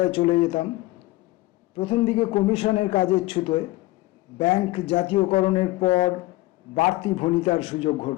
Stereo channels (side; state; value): right; quieter; 19.3 dB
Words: চলে যেতাম। প্রথম দিকে কমিশনের কাজের ছুতোয়, ব্যাংক জাতীয়করণের পর বাড়তি ভণিতার সুযোগ